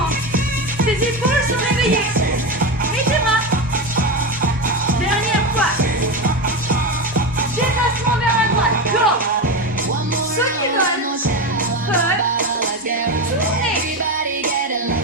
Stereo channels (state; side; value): normal; both; correlation 0.17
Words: tes épaules sont réveillées. Et tes bras. Dernière fois. Déplacement vers la droite, go. Ceux qui veulent peuvent tourner.